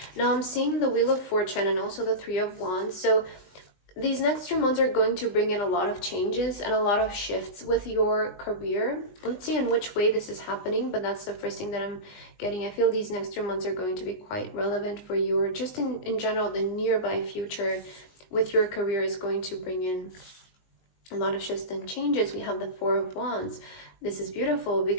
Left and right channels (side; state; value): right; late; 20 ms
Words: Now I'm seeing the Wheel of Fortune and also the Three of Wands. So these next 3 months are going to bring in a lot of changes and a lot of shifts with your career. Let's see in which way this is happening, but that's the first thing that I'm getting. I feel these next 3 months are going to be quite relevant for you, or just in general, the nearby future with your career is going to bring in a lot of shifts and changes. We have the Four of Wands. This is beautiful